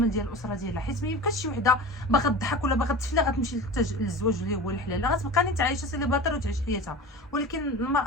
ديال الاسره ديالها، حيت ما يمكنش شي وحده باغا تضحك ولا باغا تفلا غتمشي للزواج اللي هو الحلال، غتبقى نيت عايشه سيليباتير وتعيش حياتها. ولكن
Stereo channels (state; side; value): normal; both; correlation 0.33